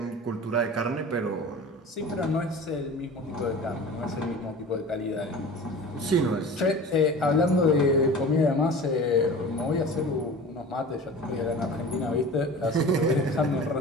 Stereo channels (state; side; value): normal; both; correlation 0.38